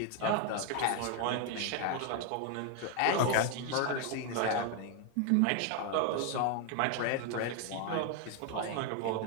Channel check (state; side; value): different; both; correlation 0.01